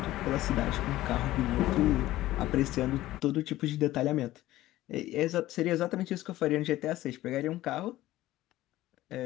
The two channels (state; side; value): quieter; right; 15.8 dB